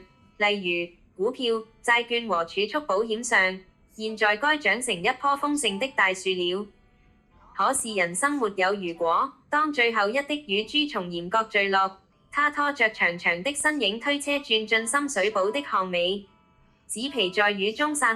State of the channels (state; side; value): identical; both; correlation 1.00